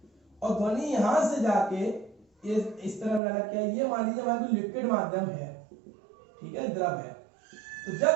और ध्वनि यहां से जाके ये इस तरह लगा क्या, ये मान लीजिए हमारा लिक्विड माध्यम है, ठीक है, द्रव है। तो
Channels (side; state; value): left; drops out; at 3.2 s